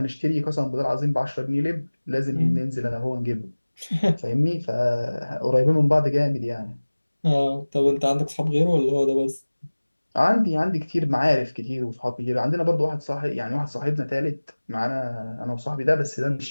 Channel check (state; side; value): inverted; both; correlation -1.00